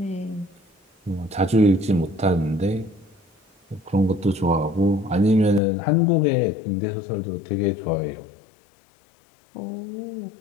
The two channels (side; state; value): right; drops out; at 5.6 s